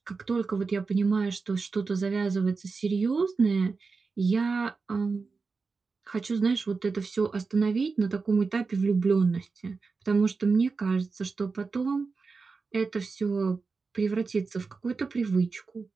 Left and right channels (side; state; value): left; quieter; 4.5 dB